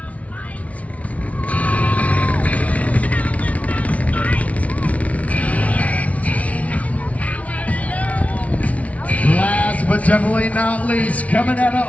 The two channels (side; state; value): right; late; 0.067 ms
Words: But definitely not least, coming out